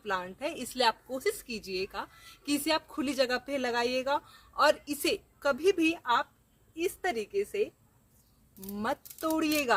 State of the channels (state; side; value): identical; both; correlation 1.00